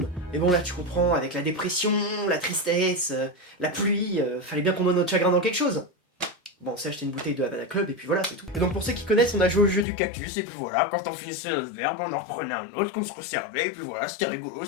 Mais bon, là, tu comprends, avec la dépression, la tristesse, la pluie, fallait bien qu'on noie notre chagrin dans quelque chose. Bon, on s'est acheté une bouteille de Havana Club et puis voilà, c'est tout. Et donc pour ceux qui connaissent, on a joué au jeu du cactus et puis voilà, quand on finissait notre verbe, on en reprenait un autre qu'on se resservait et puis voilà, c'était rigolo,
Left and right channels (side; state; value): right; drops out; at 9.9 s